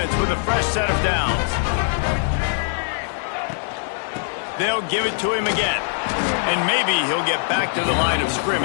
with a fresh set of downs. They'll give it to him again. And maybe he'll get back to the line of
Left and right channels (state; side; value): silent; right; 64 dB below the other